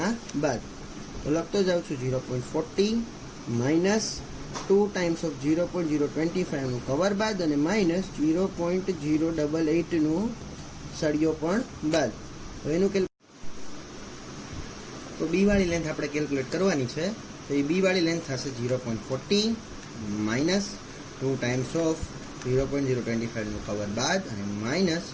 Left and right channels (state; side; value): identical; both; correlation 1.00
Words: બાદ. તો લખતો જાઉં છું 0.40 માઇનસ 2 ટાઈમ્સ ઓફ 0.025 નું કવર બાદ, અને માઇનસ 0.088 નું સળિયો પણ બાદ. તો એનું તો બી વાળી લેન્થ આપણે કેલ્ક્યુલેટ કરવાની છે. તો એ બી વાળી લેન્થ થશે 0.40 માઇનસ 2 ટાઈમ્સ ઓફ 0.025 નું કવર બાદ, અને માઇનસ